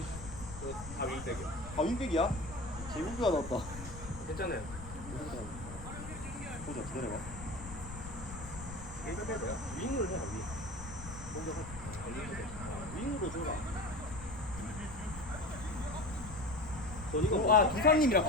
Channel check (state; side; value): noise; left; rumble, 12 dB below the sound